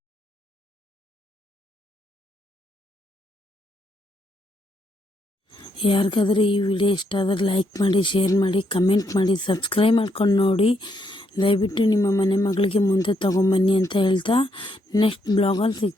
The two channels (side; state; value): both; normal; correlation 0.76